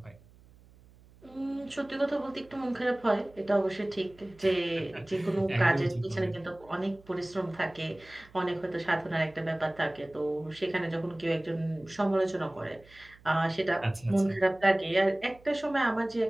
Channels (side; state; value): right; noise; hum, 26 dB below the sound